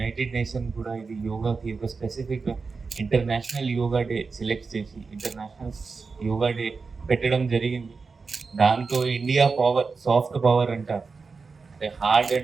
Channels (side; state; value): left; quieter; 4.6 dB